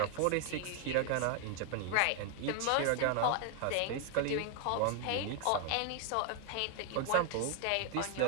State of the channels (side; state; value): both; different; correlation 0.00